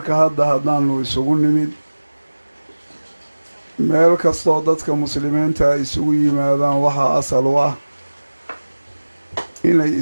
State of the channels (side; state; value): both; inverted; correlation -1.00